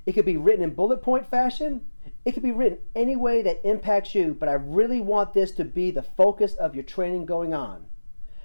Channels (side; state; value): both; inverted; correlation -1.00